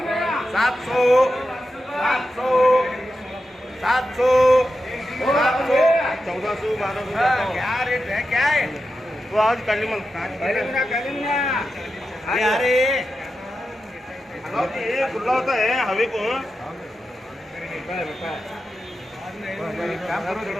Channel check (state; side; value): normal; both; correlation 0.90